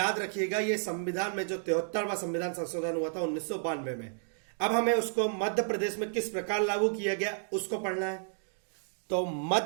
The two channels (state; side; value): silent; left; digital silence